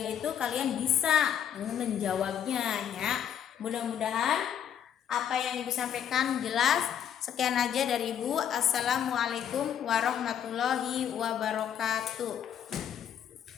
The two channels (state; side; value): quieter; right; 9.3 dB